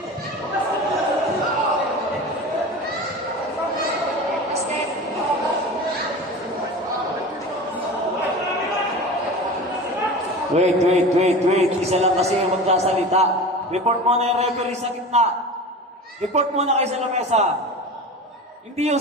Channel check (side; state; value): both; normal; correlation 0.33